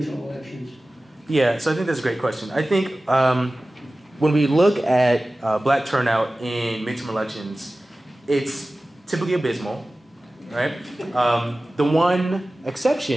elections? Yeah, so I think that's a great question. I think when we look at black turnout in midterm elections, it's typically abysmal, right? The one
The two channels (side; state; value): both; normal; correlation 0.97